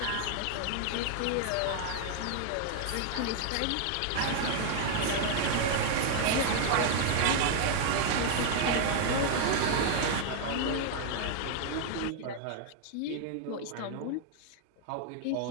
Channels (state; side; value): different; both; correlation 0.00